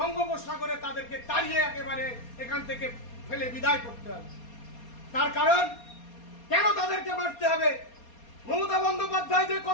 তাদেরকে তাড়িয়ে একেবারে এখান থেকে ফেলে বিদায় করতে হবে। তার কারণ কেন তাদেরকে মারতে হবে? মমতা বন্দ্যোপাধ্যায় যে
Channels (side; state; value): right; late; 4.2 ms